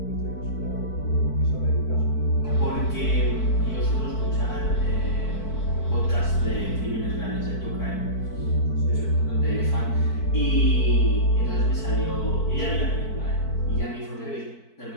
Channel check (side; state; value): right; late; 4.5 ms